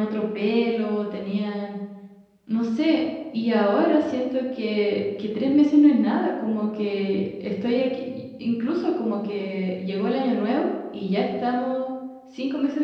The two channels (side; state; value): both; identical; correlation 1.00